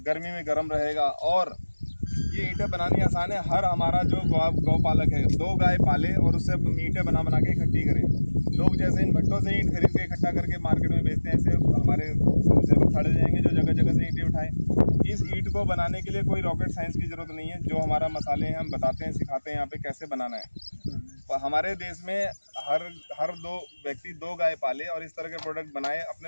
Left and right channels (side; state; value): both; inverted; correlation -1.00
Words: गर्मी में गर्म रहेगा। और ये ईंटें बनानी आसान है। हर हमारा जो गौपालक है 2 गाय पाले और उससे ईंटें बना के इकट्ठी करें। लोग जैसे इन भट्टों से ईंट खरीद के इकट्ठा करके मार्केट में बेचते हैं, ऐसे हमारे सेवक खड़े जाएंगे जो जगह जगह से ईंटें उठाएं। इस ईंट को बनाने के लिए कोई रॉकेट साइंस की जरूरत नहीं है। जो हमारा मसाले हैं हम बताते हैं, सिखाते हैं यहाँ पे कैसे बनाना है। हमारे देश में हर 2 व्यक्ति 2 गाय पाले और इस तरह के प्रोडक्ट बनाए,